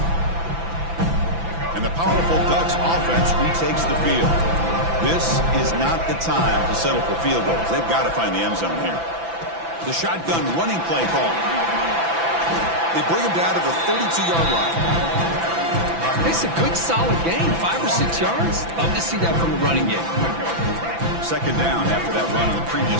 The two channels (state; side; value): late; left; 5.9 ms